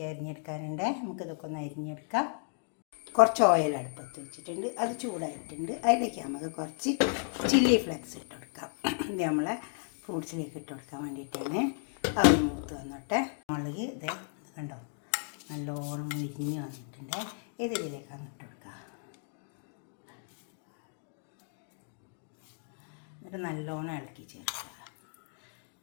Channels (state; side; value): silent; right; 55 dB below the other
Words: അരിഞ്ഞെടുക്കാനുണ്ട്. നമുക്കിതൊക്കെ ഒന്ന് അരിഞ്ഞെടുക്കാം. കുറച്ച് ഓയിൽ അടുപ്പത്ത് വെച്ചിട്ടുണ്ട്, അത് ചൂടായിട്ടുണ്ട്. അതിലേക്ക് നമുക്ക് കുറച്ച് ചില്ലി ഫ്ലെക്സ് ഇട്ട് കൊടുക്കാം. ഇത് നമ്മളെ ഫ്രൂട്ട്സിലേക്ക് ഇട്ട് കൊടുക്കാൻ വേണ്ടിയിട്ടാണ്. അത് മൂത്ത് വന്നോട്ടെ. മുളക് ഇത് കണ്ടോ, നല്ലോണം മുരിഞ്ഞ് വന്നിട്ടുണ്ട്. ഇതിലേക്കാണ് ഇട്ട് കൊടുക്കുക. എന്നിട്ട് നല്ലോണം ഇളക്കി ചേർക്കുക.